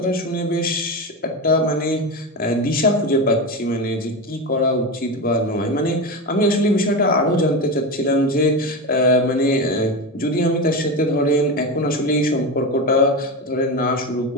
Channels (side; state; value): both; normal; correlation 0.19